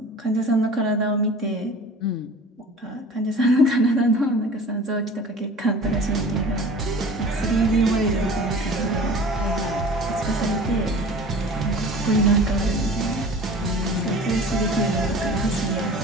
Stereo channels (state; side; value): normal; both; correlation 0.42